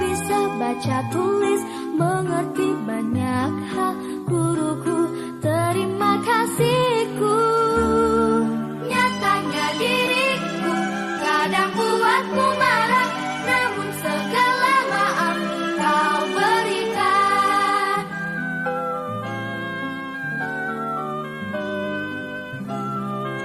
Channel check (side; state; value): both; identical; correlation 1.00